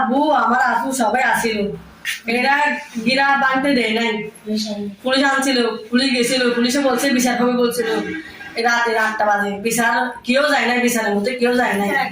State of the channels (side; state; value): both; identical; correlation 1.00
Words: আমার আপু সবাই আসিল। এরা গিরা বাঁধতে দেয় নাই। পুলিশ আনছিল, পুলিশ গেছিল, পুলিশে বলছে বিচার হবে বলছিল। রাতে 8টা বাজে বিচার কেউ যায় নাই, বিচারের মধ্যে কেউ যায় নাই।